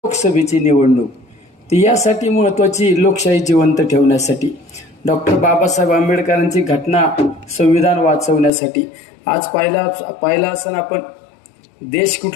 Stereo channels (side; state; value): right; drops out; at 8.5 s